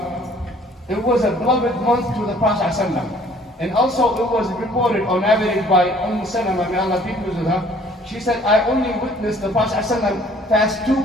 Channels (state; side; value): normal; both; correlation 0.56